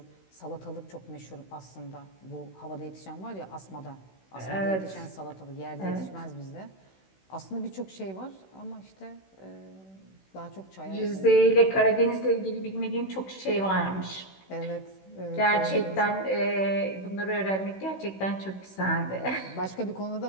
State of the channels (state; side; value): late; right; 16 ms